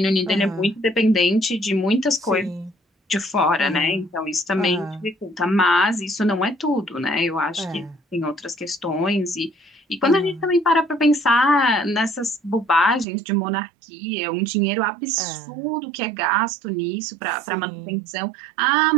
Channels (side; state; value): left; drops out; at 13.1 s